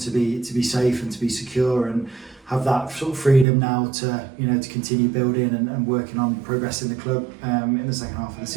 be safe and to be secure and have that sort of freedom now to to continue building and working on progressing the club in the second half of the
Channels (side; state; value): left; drops out; at 3.5 s